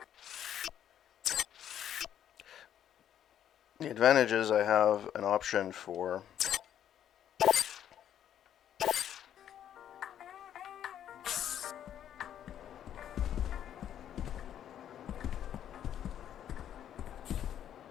The advantage is I have an option for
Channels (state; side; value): quieter; right; 10.2 dB